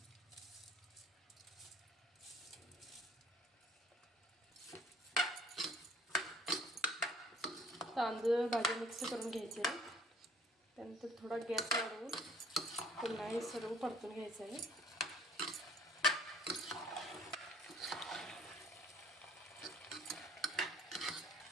तांदूळ भाज्या मिक्स करून घ्यायचे आहे। त्यानंतर थोडा गॅस वाढवून पुन्हा हे सर्व परतून घ्यायचं आहे।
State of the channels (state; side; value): normal; both; correlation 0.57